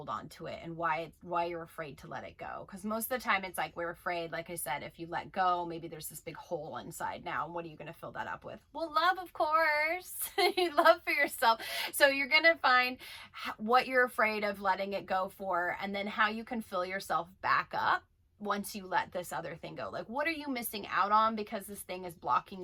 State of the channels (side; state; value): both; identical; correlation 1.00